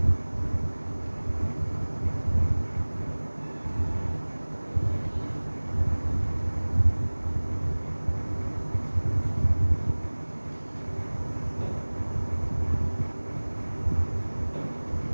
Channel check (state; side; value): inverted; both; correlation -1.00